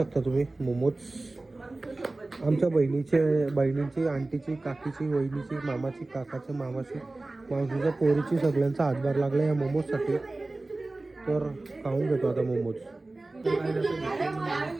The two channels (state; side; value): quieter; left; 3.0 dB